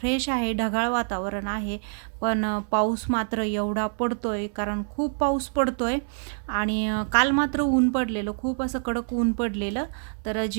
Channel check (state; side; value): silent; left; 58 dB below the other